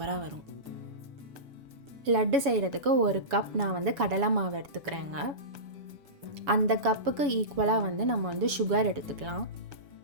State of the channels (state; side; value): late; left; 7.1 ms